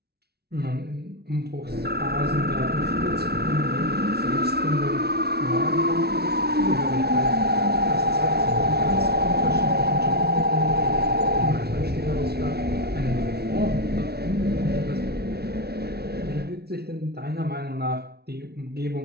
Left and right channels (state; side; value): late; left; 0.46 ms